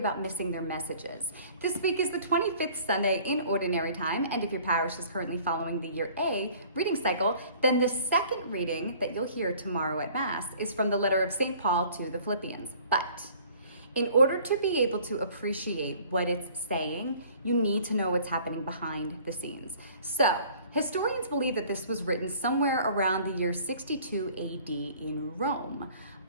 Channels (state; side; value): inverted; both; correlation -0.52